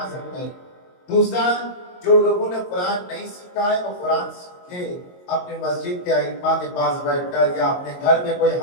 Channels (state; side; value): late; right; 22 ms